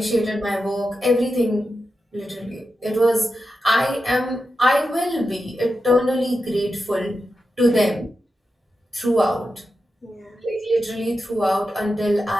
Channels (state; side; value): normal; both; correlation 0.89